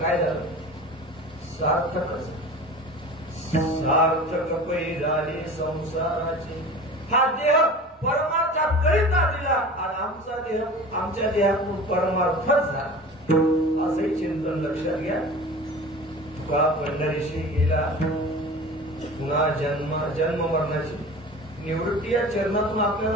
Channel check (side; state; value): both; normal; correlation 0.37